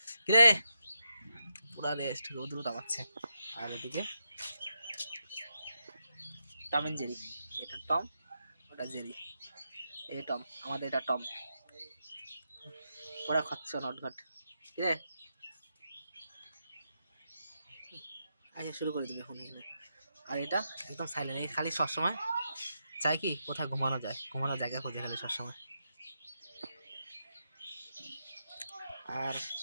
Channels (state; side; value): inverted; both; correlation -0.84